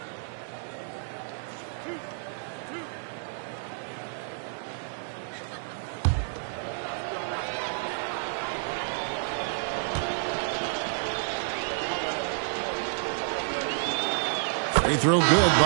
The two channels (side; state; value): left; silent; digital silence